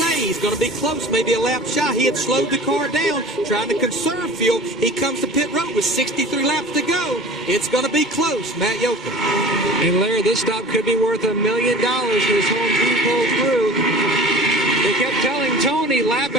he's going to be close, maybe a lap shy. He had slowed the car down, trying to conserve fuel. He comes to pit road with 63 laps to go. It's going to be close. Matt Yoakum. And Larry, this stop could be worth $1 million if this whole team pulls through. They kept telling Tony lap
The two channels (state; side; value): normal; both; correlation 0.40